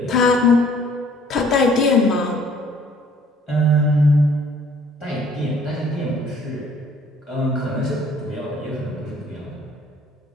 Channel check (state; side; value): normal; both; correlation 0.57